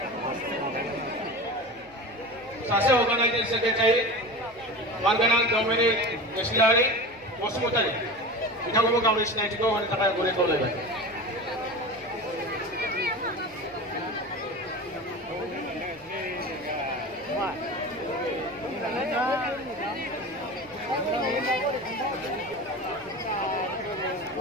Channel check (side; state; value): left; noise; hum, 28 dB below the sound